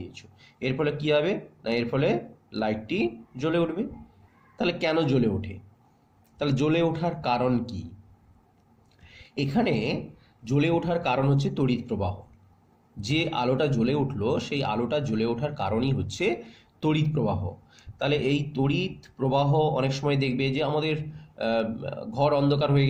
এর ফলে কি হবে না, এর ফলে লাইটটি জ্বলে উঠবে। তাহলে কেন জ্বলে ওঠে? তাহলে জ্বলে ওঠার কারণ কি? এখানে জ্বলে ওঠার কারণ হচ্ছে তড়িৎ প্রবাহ। যে আলোটা জ্বলে উঠলো, সেই আলোটা জ্বলে ওঠার কারণই হচ্ছে তড়িৎ প্রবাহ। তাহলে এই তড়িৎ প্রবাহ অনেক সময় দেখবে যে আমাদের ঘর অন্ধকার হয়ে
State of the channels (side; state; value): both; identical; correlation 1.00